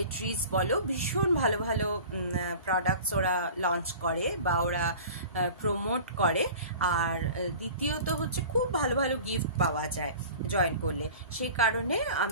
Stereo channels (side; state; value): both; inverted; correlation -0.40